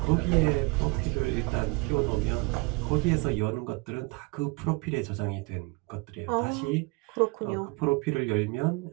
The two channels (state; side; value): quieter; left; 27.6 dB